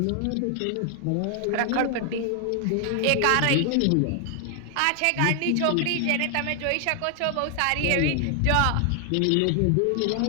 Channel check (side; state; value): both; different; correlation 0.00